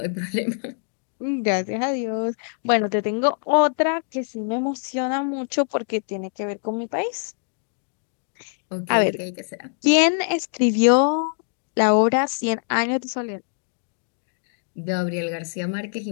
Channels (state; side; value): silent; right; digital silence